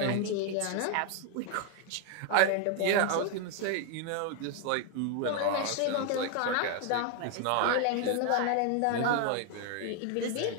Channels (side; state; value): both; different; correlation 0.00